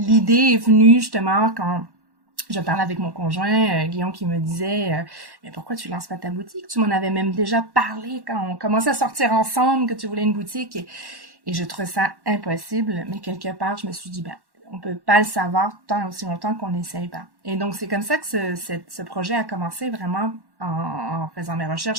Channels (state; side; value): late; left; 1.1 ms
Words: est venue justement quand je parlais avec mon conjoint, Guillaume, qui me disait mais pourquoi tu lances pas ta boutique? Tu m'en avais même déjà parlé quand on commençait à sortir ensemble, que tu voulais une boutique. Et je trouvais ça impossible. Mais quelque part, je me suis dit, on peut pas le savoir tant aussi longtemps qu'on n'essaye pas. Et donc, c'est comme ça que ce projet a commencé vraiment en faisant mes